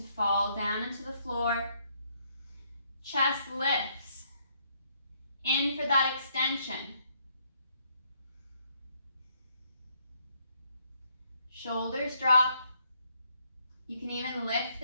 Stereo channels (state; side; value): inverted; both; correlation -0.70